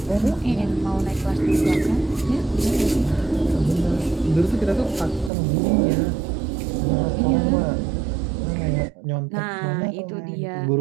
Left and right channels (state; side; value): drops out; left; at 5.3 s